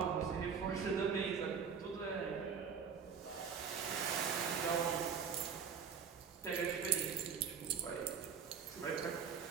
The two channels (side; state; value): left; quieter; 6.7 dB